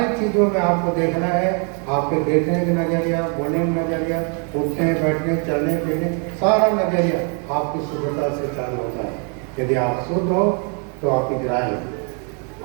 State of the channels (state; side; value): quieter; left; 38.8 dB